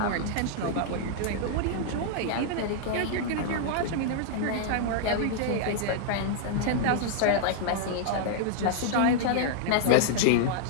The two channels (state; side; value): different; both; correlation -0.01